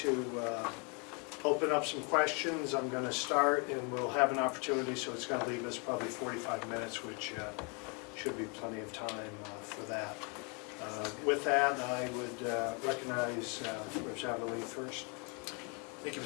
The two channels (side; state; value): right; quieter; 33.2 dB